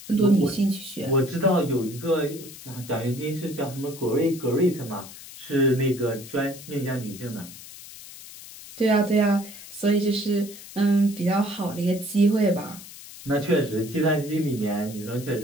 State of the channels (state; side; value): noise; left; hiss, 16 dB below the sound